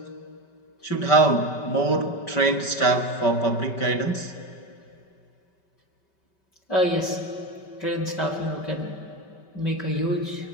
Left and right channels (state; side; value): late; right; 5.2 ms